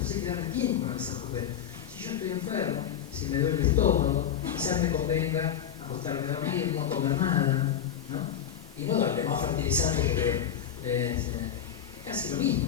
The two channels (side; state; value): right; quieter; 9.3 dB